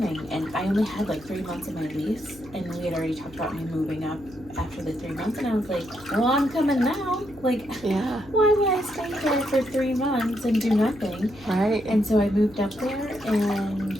And I only had like 3 months of my lease, and we had already talked about me moving up after the 3 months, and I was like, well, I'm coming now. Like, Yeah. why would I stay there for 3 months and do nothing? Right. And so I moved up there, and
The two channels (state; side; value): noise; left; hum, 22 dB below the sound